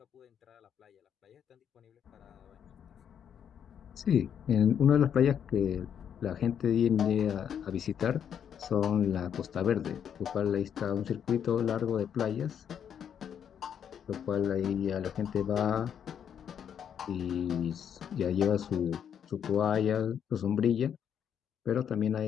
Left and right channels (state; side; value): quieter; right; 8.5 dB